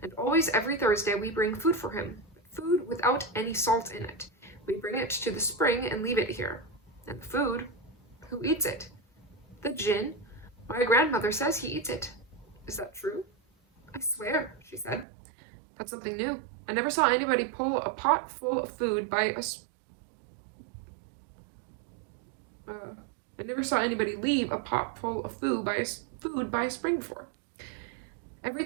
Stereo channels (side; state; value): left; drops out; at 15.1 s